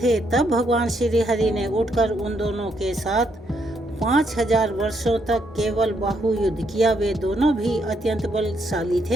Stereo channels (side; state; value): both; normal; correlation 0.75